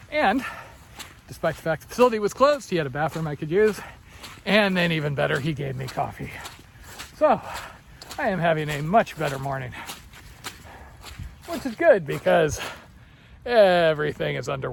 and despite the fact the facility was closed, he had a bathroom I could use, and then even better, he gave me coffee. So I am having a much better morning, which is good because everything is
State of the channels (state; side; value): identical; both; correlation 1.00